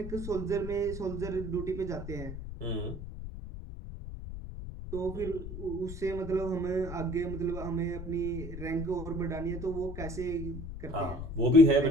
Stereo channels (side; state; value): left; noise; rumble, 8 dB below the sound